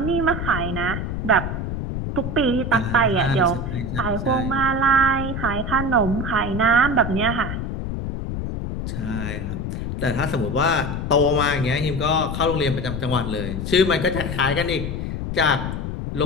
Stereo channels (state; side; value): noise; left; rumble, 4 dB below the sound